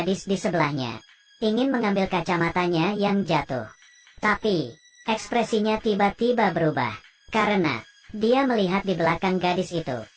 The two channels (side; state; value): both; identical; correlation 1.00